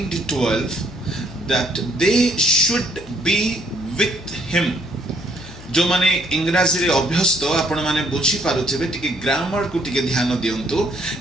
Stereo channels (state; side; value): noise; left; hum, 19 dB below the sound